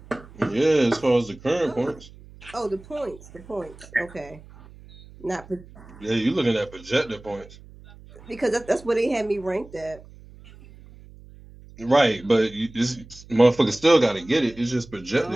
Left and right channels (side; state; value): right; noise; hum, 21 dB below the sound